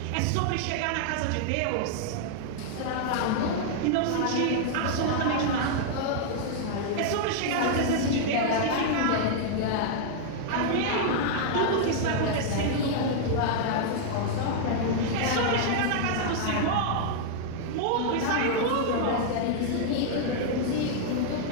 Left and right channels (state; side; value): different; both; correlation -0.01